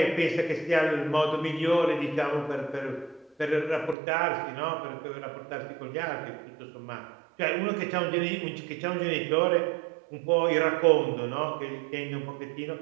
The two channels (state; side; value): drops out; left; at 4.0 s